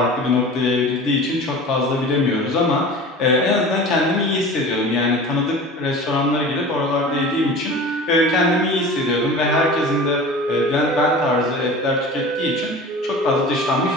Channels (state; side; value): normal; both; correlation 0.37